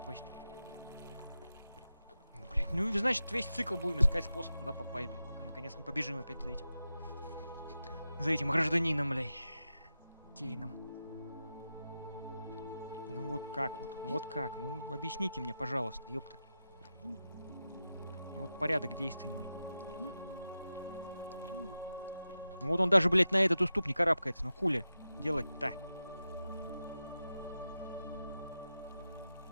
Блядь, ну значит весь цикл будем искать способ туда попасть, блядь. Пока наконец не побежим опять за этим. За этим гражданином, блядь. Кейном. Ну вот как вот? Ну вот как? Ну объясните мне, пожалуйста, ёпта. Вот порядок действий мой. Ну вот он даже, блядь, на этот уступ не карабкается. Ну хули делать-то?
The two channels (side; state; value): both; inverted; correlation -0.91